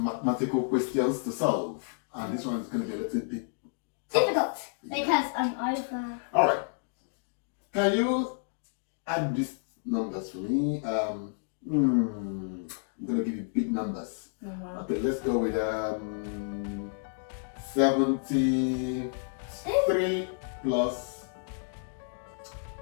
mathematical questions to solve. And this one is going to be a little bit difficult because I'm over. Alright. Can you add these numbers for me? I'm going to give you big numbers. Okay, let's go with 73 plus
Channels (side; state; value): right; silent; digital silence